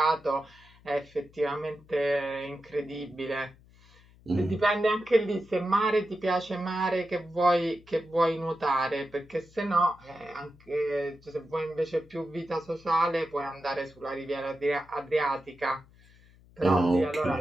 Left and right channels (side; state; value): left; noise; hum, 26 dB below the sound